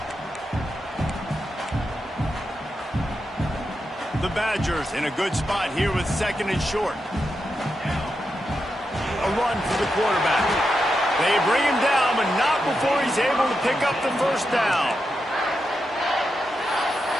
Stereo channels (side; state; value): both; normal; correlation 0.87